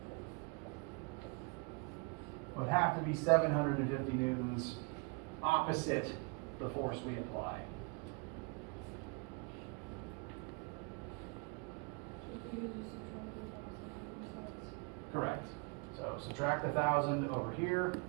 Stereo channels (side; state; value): left; quieter; 32.2 dB